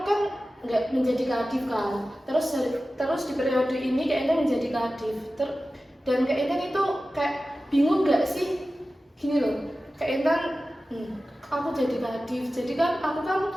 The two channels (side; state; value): both; normal; correlation 0.95